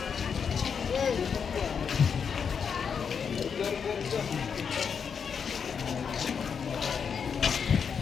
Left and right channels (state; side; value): quieter; right; 6.6 dB